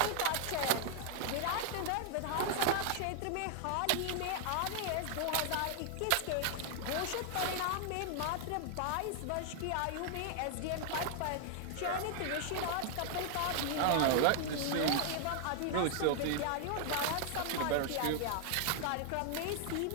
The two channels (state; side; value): different; both; correlation 0.00